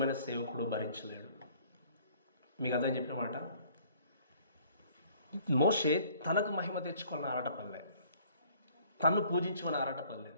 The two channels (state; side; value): inverted; both; correlation -0.57